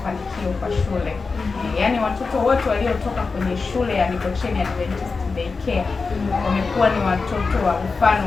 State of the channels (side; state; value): right; quieter; 4.4 dB